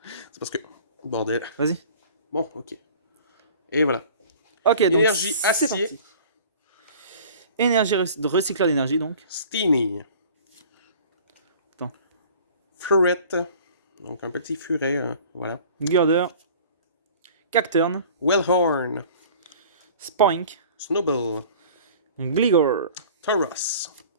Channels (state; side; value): inverted; both; correlation -0.46